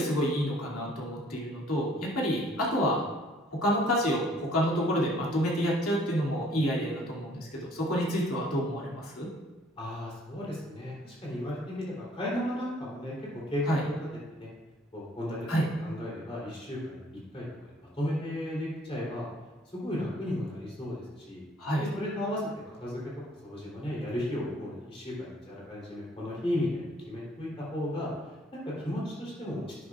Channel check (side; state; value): both; normal; correlation 0.59